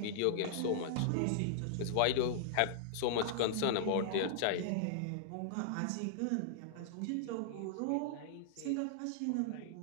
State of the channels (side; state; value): both; different; correlation -0.01